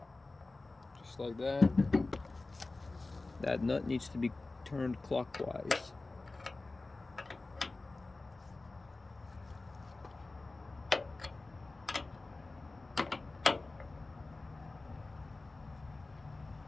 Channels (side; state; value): right; quieter; 3.3 dB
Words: Just like that. That nut needs to be turned clockwise.